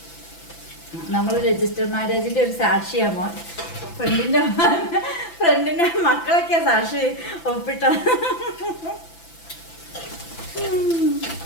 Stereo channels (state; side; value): late; right; 5.9 ms